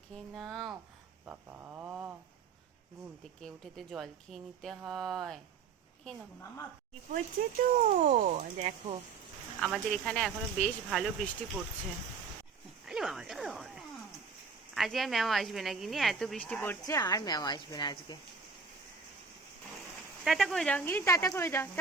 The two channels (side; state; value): left; quieter; 5.3 dB